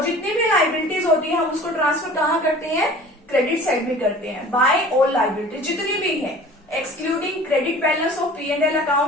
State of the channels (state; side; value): normal; both; correlation 0.44